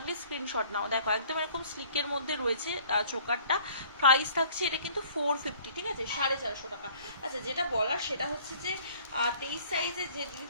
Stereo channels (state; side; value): inverted; both; correlation -0.54